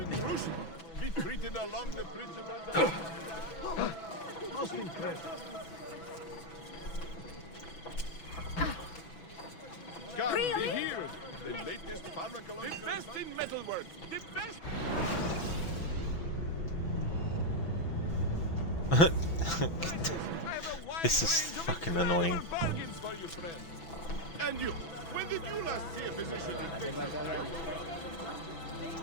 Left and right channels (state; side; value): late; right; 6.0 ms